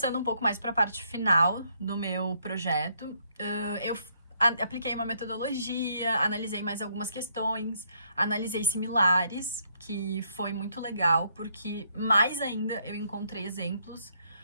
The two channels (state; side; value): inverted; both; correlation -0.70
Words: um pouco mais para a parte final do meu projeto, eu apliquei uma metodologia, analisei mais algumas questões, analisei similares, que foi muito legal, porque mais ainda eu encontrei exemplos